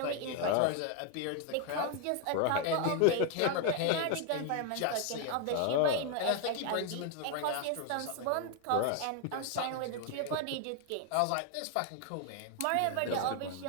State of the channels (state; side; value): different; both; correlation 0.01